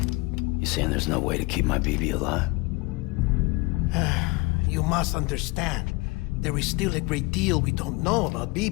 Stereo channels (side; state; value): right; quieter; 24.6 dB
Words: You saying there's no way to keep my BB alive? You must understand, there is still a great deal we don't know about